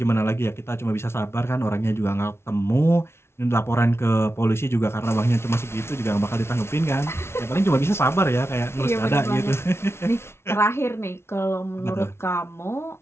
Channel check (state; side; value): late; right; 0.12 ms